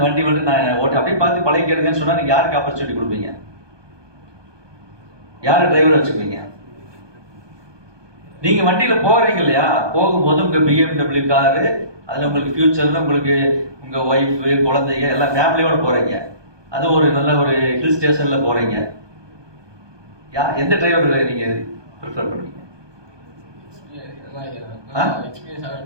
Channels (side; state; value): left; late; 1.2 ms